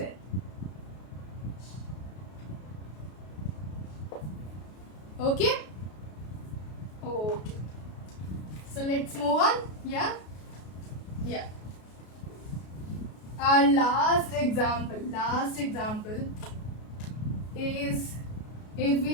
Okay? Okay. So let's move on. Yeah? Yeah. Our last example is if we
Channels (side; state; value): right; late; 33 ms